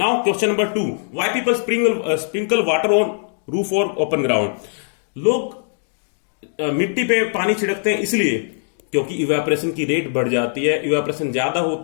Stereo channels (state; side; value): silent; right; digital silence